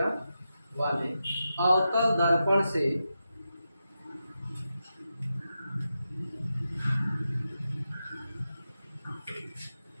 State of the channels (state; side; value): inverted; both; correlation -0.89